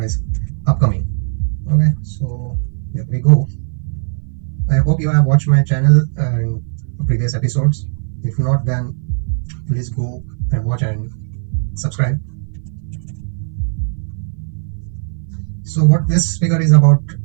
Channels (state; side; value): silent; left; 58 dB below the other